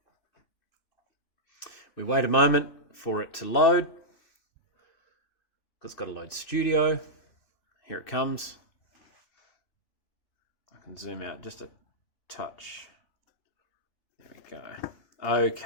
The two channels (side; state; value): right; late; 3.0 ms